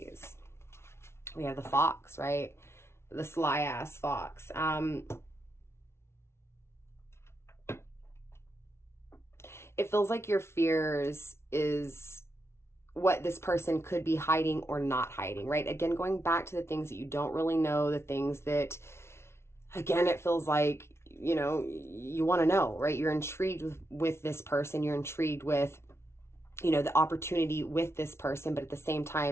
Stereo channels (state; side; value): late; right; 0.12 ms